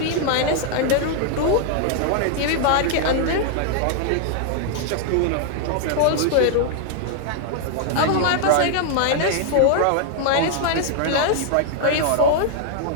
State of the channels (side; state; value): both; different; correlation 0.00